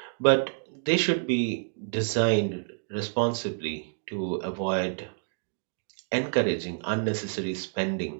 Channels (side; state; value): left; silent; digital silence